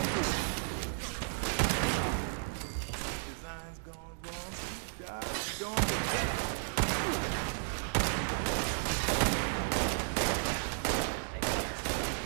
Design's gone wrong. Job's gone to death.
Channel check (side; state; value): left; silent; digital silence